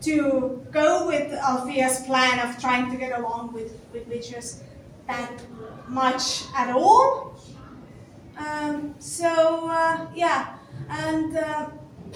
to go with Althea's plan of trying to get along with witches that much at all.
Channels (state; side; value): identical; both; correlation 1.00